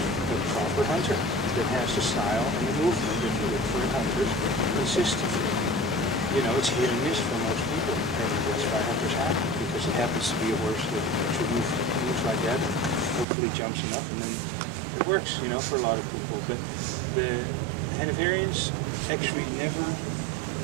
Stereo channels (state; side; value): drops out; left; at 13.2 s